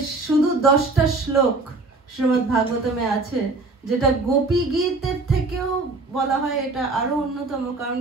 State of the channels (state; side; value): quieter; left; 3.4 dB